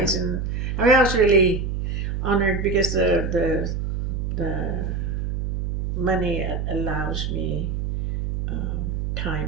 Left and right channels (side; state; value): right; noise; hum, 1 dB below the sound